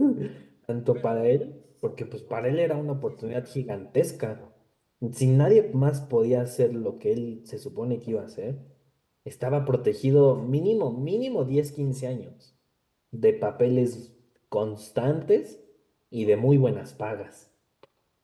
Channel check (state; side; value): identical; both; correlation 1.00